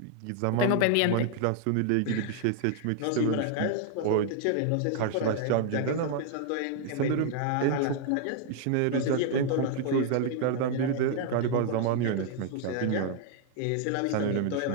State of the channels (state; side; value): different; both; correlation 0.00